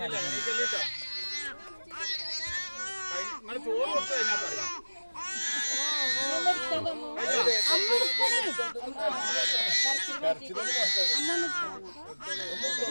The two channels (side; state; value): both; inverted; correlation -1.00